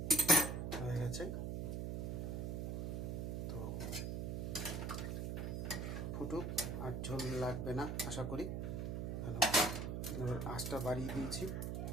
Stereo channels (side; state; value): right; noise; hum, 2 dB below the sound